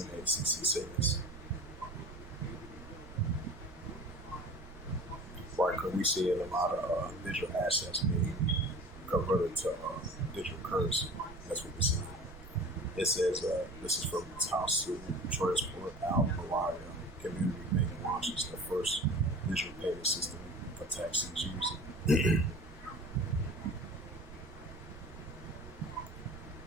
says. Right, because we see a lot of digital assets being converted to digital currency. That's what we're seeing. It says this is from Taosu Transport Al Malaya Community Bank launches the first digital payment system for taxis using.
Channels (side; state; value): right; noise; rumble, 16 dB below the sound